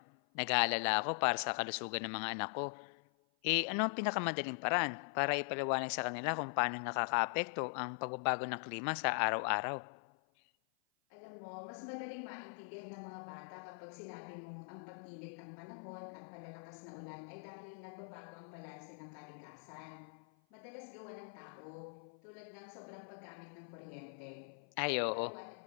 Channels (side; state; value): right; silent; 50 dB below the other